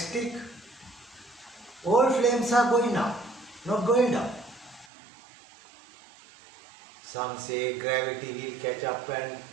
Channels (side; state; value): left; drops out; at 4.9 s